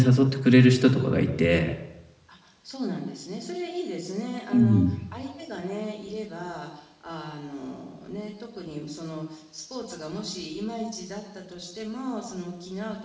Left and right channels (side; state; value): both; identical; correlation 1.00